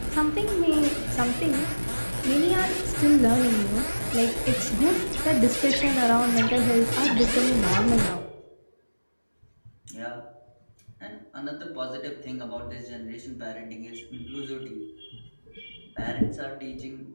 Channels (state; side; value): inverted; both; correlation -1.00